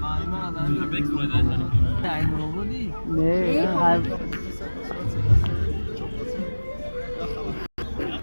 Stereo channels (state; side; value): inverted; both; correlation -1.00